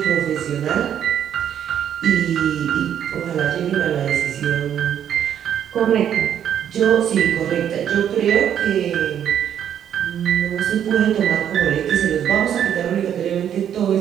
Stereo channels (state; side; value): quieter; left; 9.5 dB